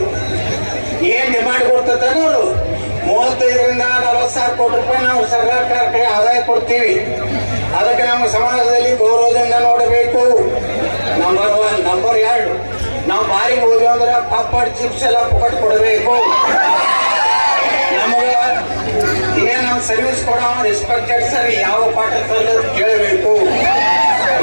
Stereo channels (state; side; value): inverted; both; correlation -1.00